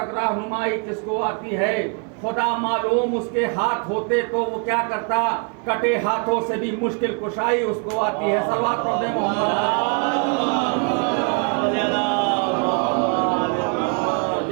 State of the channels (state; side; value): quieter; left; 37.2 dB